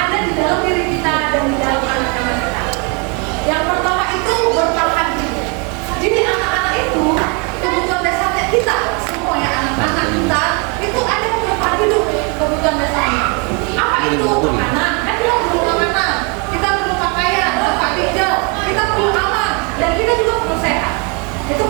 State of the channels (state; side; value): quieter; left; 33.2 dB